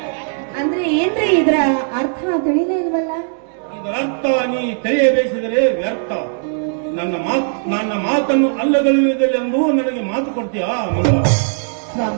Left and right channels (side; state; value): left; silent; digital silence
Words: ಅಂದ್ರೆ ಏನ್ರಿ ಇದರ ಅರ್ಥ ತಿಳಿಲೇ ಇಲ್ವಲ್ಲ? ಇದರ ಅರ್ಥ ನೀ ತಿಳಿಯಬೇಕಿದರೆ ವ್ಯರ್ಥ. ನನ್ನ ಮಾತನ್ನು ಅಲ್ಲಗಳೆಯುವುದಿಲ್ಲೆಂದು ನನಗೆ ಮಾತು ಕೊಡ್ತೀಯಾ ಮಂಗಳ?